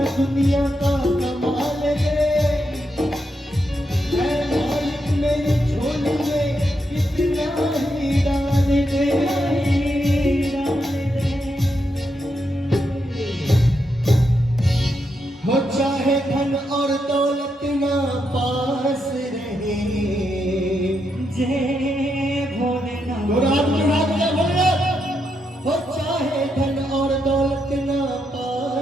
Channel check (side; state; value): both; normal; correlation 0.82